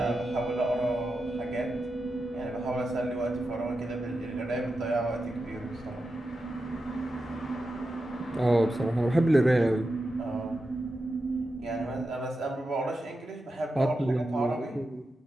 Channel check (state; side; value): normal; both; correlation 0.90